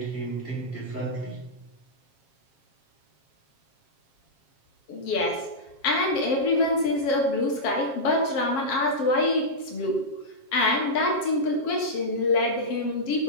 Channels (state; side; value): late; right; 7.4 ms